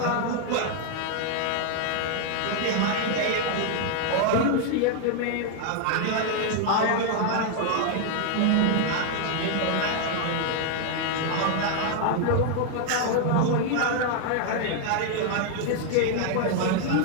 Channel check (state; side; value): different; both; correlation 0.00